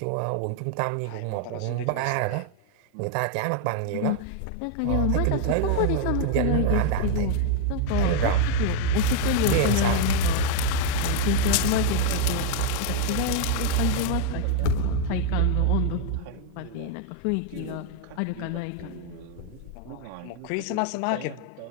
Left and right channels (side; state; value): both; different; correlation 0.00